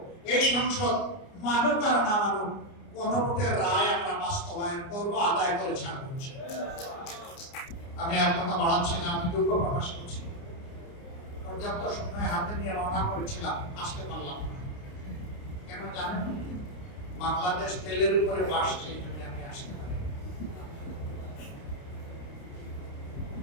এই সংসদ মানুক আর না মানুক গণভোটের রায় আমরা বাস্তবায়ন করব, আদায় করে ছাড়ব। আমি আর কথা বাড়াচ্ছি না, আমি দুঃখ প্রকাশ করছি। পর্যাপ্ত সময় হাতে নিয়ে রওনা করেছিলাম, আসতে পারলাম না। কেন জানেন? বাংলাদেশ তেলের উপরে বাসছে, এই জন্য আমি আসতে পারি।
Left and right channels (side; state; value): right; late; 29 ms